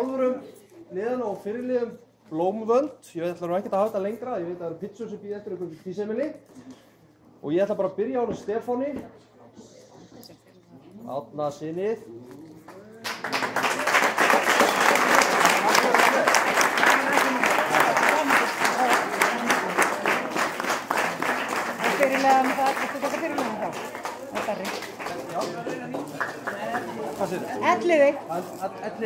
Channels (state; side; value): identical; both; correlation 1.00